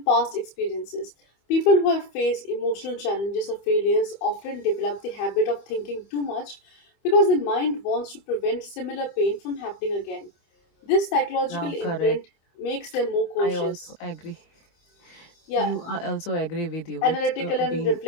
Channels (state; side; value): late; right; 25 ms